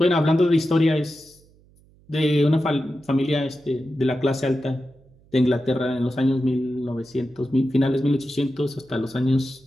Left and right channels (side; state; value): right; noise; hum, 29 dB below the sound